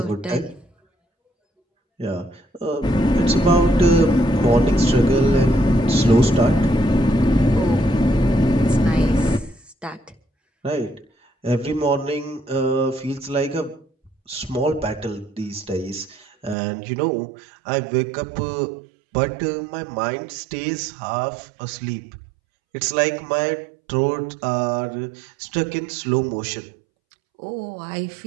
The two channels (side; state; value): left; drops out; at 16.6 s